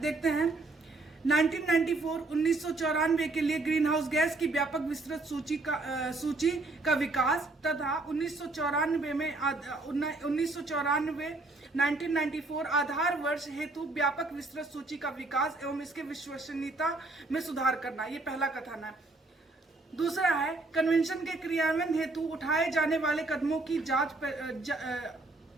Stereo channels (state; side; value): quieter; left; 3.2 dB